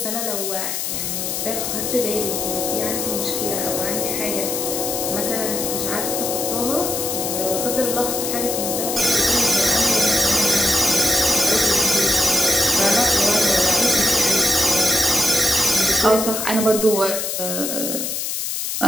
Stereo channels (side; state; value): left; noise; hiss, 3 dB below the sound